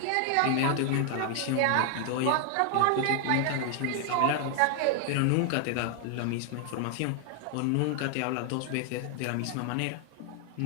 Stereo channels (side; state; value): both; different; correlation 0.00